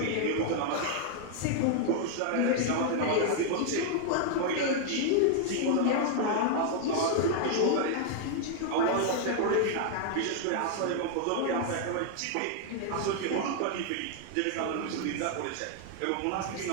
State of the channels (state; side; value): different; both; correlation 0.00